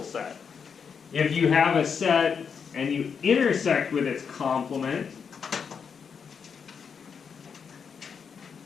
set. If you have a set and you intersect with its complement,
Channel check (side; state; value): right; quieter; 6.4 dB